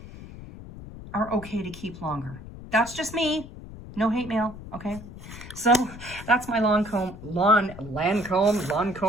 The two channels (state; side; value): noise; left; rumble, 14 dB below the sound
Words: are okay to keep longer. That's just me. No hate mail, okay? So that's my Lancome,